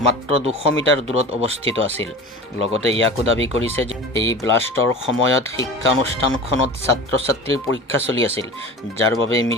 মাত্ৰ 200 মিটাৰ দূৰত অৱস্থিত আছিল। লগতে ইয়াকো দাবী কৰিছে যে এই ব্লাষ্টৰ সময়ত শিক্ষানুষ্ঠানখনত ছাত্ৰ-ছাত্ৰীৰ পৰীক্ষা চলি আছিল, যাৰ বাবে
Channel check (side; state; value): both; normal; correlation 0.35